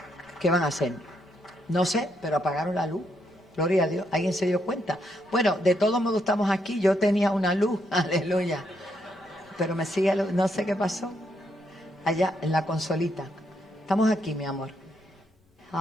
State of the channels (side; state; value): both; normal; correlation 0.77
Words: ¿Qué van a hacer? No sé, pero apagaron la luz. Gloria a Dios. ¿Alguien se dio cuenta? Bueno, de todos modos estamos aquí. Yo tenía una luz, aleluya. Pero me sigue, no sé qué pasó. Allá en la consolita. Estamos aquí, mi amor.